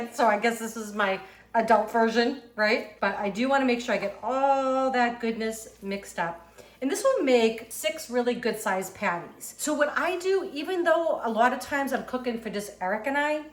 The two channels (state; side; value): identical; both; correlation 1.00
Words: so I guess this is my adult version, right? But I do want to make sure I get all that goodness mixed up. And this will make 6 really good sized patties. So what I do, even though a lot of times I'm cooking for just Eric and I,